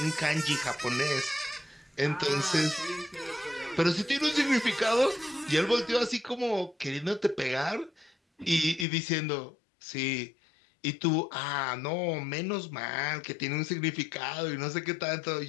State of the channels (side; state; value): right; drops out; at 8.8 s